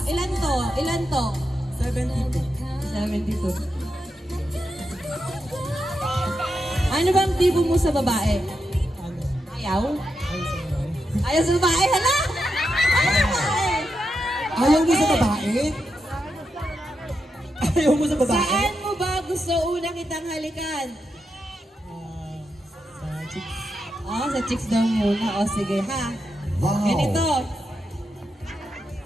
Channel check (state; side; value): normal; both; correlation 0.86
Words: Ilan to? Ilan to? 72. 72. Ano bang tipo mo sa babae? Ayaw? Ayaw sa babae? Hala! Ayaw sa babae! Ayaw mo sa babae? Ayaw mo sa babae? Saan mo ba gusto una kitang halikan? Sa chicks. Oh, sa chicks daw muna. O, sige ha. Wow. Ganito.